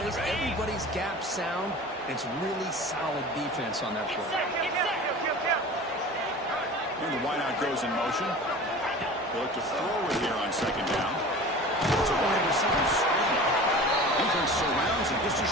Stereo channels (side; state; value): both; normal; correlation 0.38